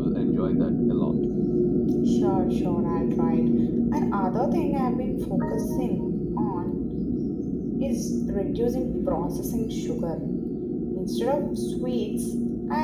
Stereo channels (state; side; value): identical; both; correlation 1.00